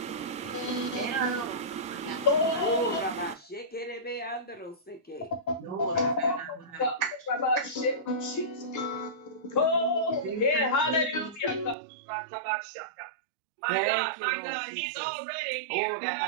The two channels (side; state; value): left; drops out; at 11.8 s